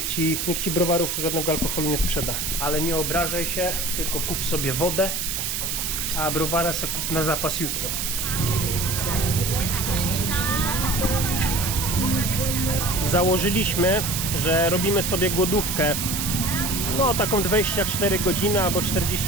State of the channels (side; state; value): right; noise; hiss, 2 dB below the sound